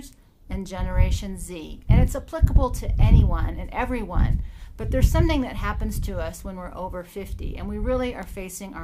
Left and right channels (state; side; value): identical; both; correlation 1.00